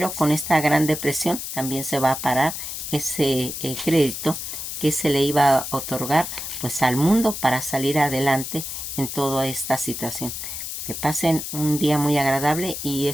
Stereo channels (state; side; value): noise; left; hiss, 6 dB below the sound